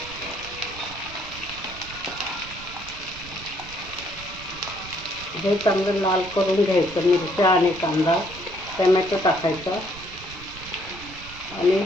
हे चांगलं लाल करून घ्यायचं. मिरच्या आणि कांदा, टोमॅटो टाकायचा आणि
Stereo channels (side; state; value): right; noise; rumble, 16 dB below the sound